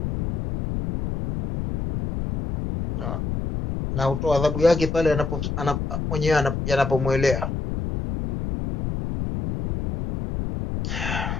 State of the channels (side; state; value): left; noise; rumble, 3 dB below the sound